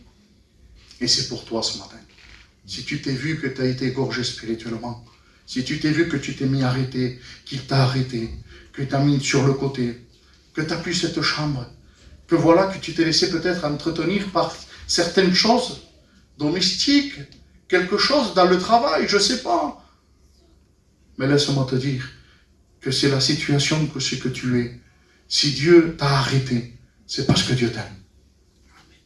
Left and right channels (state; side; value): identical; both; correlation 1.00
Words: Et c'est pour toi ce matin. Si tu t'es vu que tu as été égorgé spirituellement, si tu t'es vu que tu t'es mis arrêté, qu'il t'a arrêté, que tu as mis sur le côté, que tu n'as plus cette chambre, que voilà que tu t'es laissé peut-être entretenir par certaines choses domestiques, quelque chose dans le travail, je ne sais pas. Mais laisse-moi te dire que c'est la situation que c'est que tu es. Si Dieu t'a arrêté, c'est parce que Dieu t'aime.